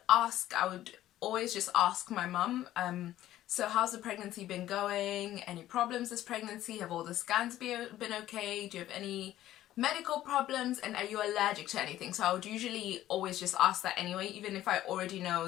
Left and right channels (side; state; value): right; quieter; 13.6 dB